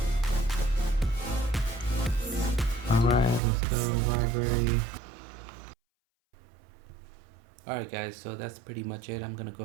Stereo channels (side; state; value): left; drops out; at 3.4 s